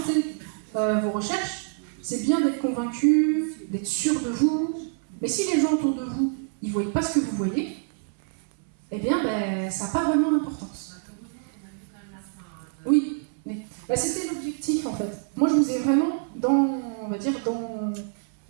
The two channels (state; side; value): silent; left; 61 dB below the other